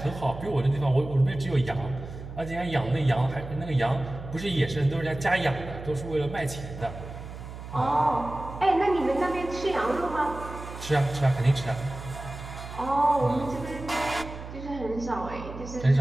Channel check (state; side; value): noise; right; hum, 11 dB below the sound